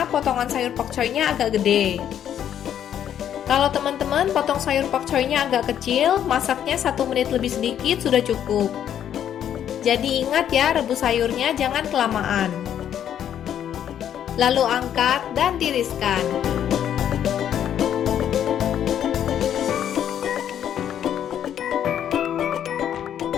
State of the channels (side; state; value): right; quieter; 9.9 dB